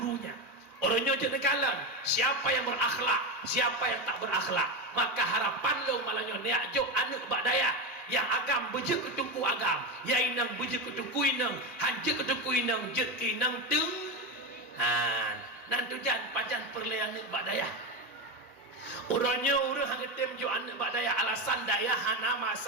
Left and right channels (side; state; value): both; normal; correlation 0.15